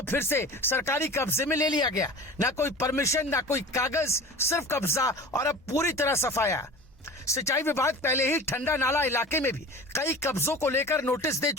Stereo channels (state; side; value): normal; both; correlation 0.37